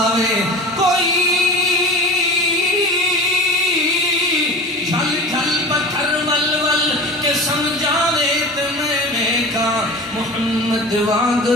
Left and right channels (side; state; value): both; normal; correlation 0.34